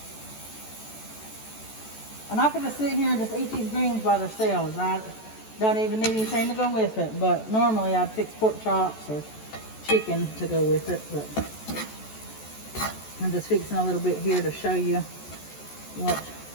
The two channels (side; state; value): right; late; 14 ms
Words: I'm not going to sit here and just eat these greens by themselves. I don't even need anything to go with it, but normally I'd fix pork chops or chicken to go with it. But I'm just fixing a little bit here to show you what